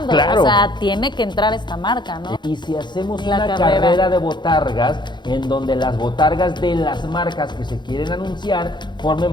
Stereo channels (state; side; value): late; right; 0.22 ms